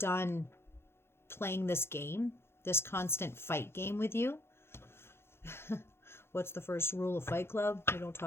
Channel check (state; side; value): late; right; 0.12 ms